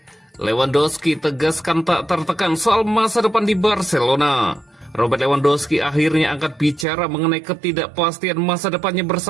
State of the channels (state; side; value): drops out; left; at 6.9 s